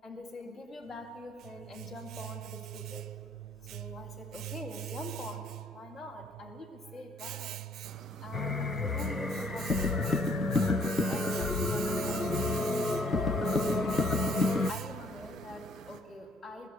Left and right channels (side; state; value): both; normal; correlation 0.62